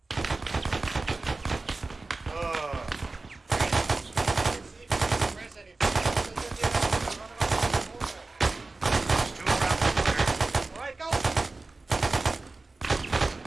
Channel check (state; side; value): quieter; left; 3.4 dB